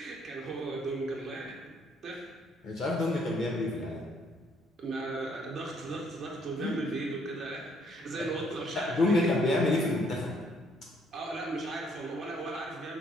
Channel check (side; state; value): both; normal; correlation 0.67